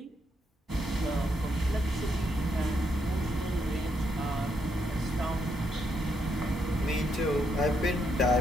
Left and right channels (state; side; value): normal; both; correlation 0.78